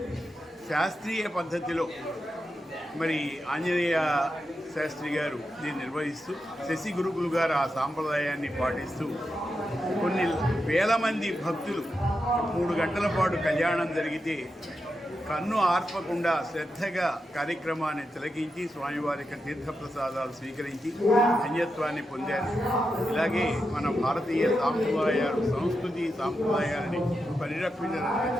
శాస్త్రీయ పద్ధతిలో మరి ఆంజనేయ శాస్త్రి గారు దీన్ని నిర్వహిస్తూ, శశి గురుకులు గారు ఆ సాంప్రదాయాన్ని పాటిస్తూ కొన్ని వేల మంది భక్తులు 3 గంటల పాటు కళ్యాణం జరిగితే కన్ను ఆర్పకుండా శ్రద్ధగా కార్యక్రమాన్ని తిలకించి స్వామివారి యొక్క తీర్థప్రసాదాలు స్వీకరించి ధన్యత్వాన్ని పొందారు. ఇలాగే మన భారతీయ సాంప్రదాయాలు, సంస్కృతి సాంప్రదాయాలని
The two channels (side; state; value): both; normal; correlation 0.87